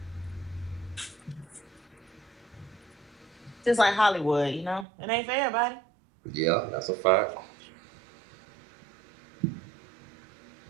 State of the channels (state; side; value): drops out; left; at 4.9 s